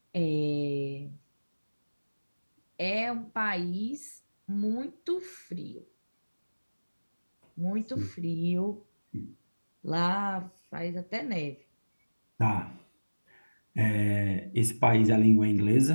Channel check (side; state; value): both; inverted; correlation -1.00